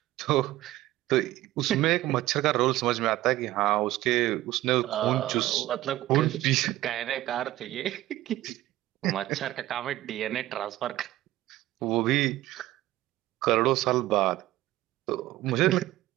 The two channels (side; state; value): left; quieter; 15.8 dB